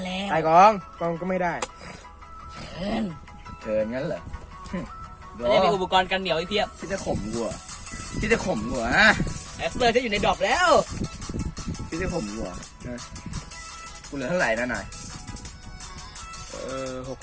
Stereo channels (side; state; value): both; identical; correlation 1.00